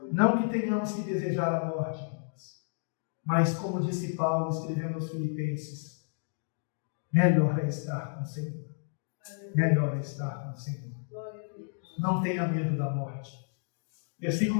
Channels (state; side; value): silent; right; digital silence